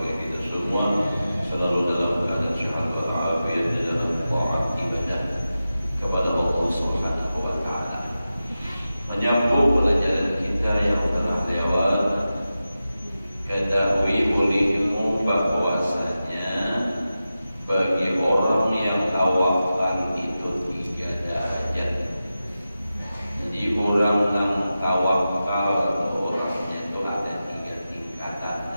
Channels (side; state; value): both; inverted; correlation -0.93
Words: kita semua selalu dalam keadaan sehat walafiat di dalam taat ibadah kepada Allah Subhanahu wa taala. Menyambung pelajaran kita yang telah lewat, ketahui olehmu bahwasanya bagi orang yang tawakal itu 3 derajat. Jadi orang yang tawakal orangnya itu ada 3 tingkatan